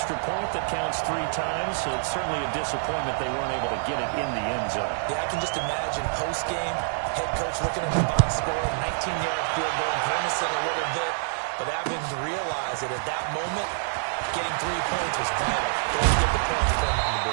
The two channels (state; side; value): silent; left; digital silence